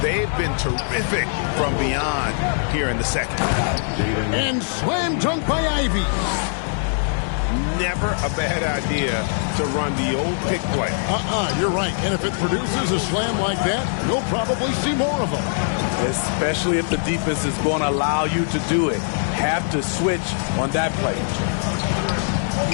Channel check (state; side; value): silent; right; 64 dB below the other